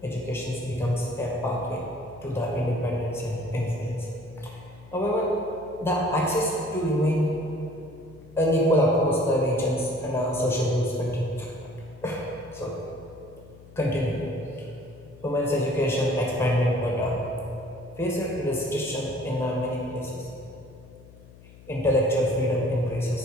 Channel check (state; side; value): noise; left; hum, 21 dB below the sound